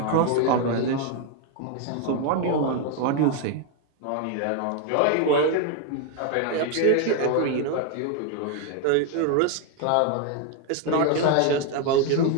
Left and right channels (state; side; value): different; both; correlation 0.01